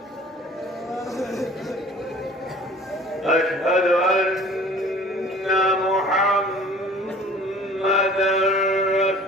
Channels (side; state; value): both; normal; correlation 0.48